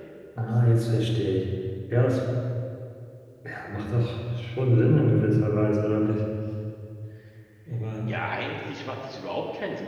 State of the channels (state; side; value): identical; both; correlation 1.00